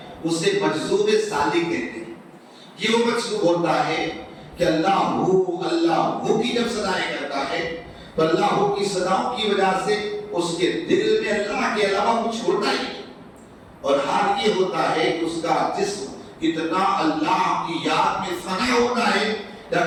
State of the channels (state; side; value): identical; both; correlation 1.00